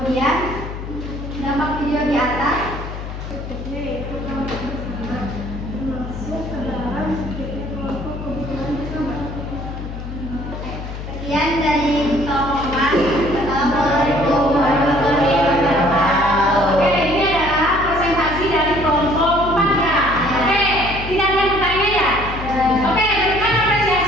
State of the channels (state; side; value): noise; left; hum, 8 dB below the sound